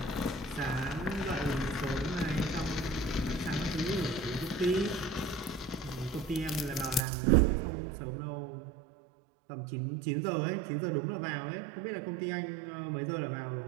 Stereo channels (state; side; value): drops out; left; at 7.0 s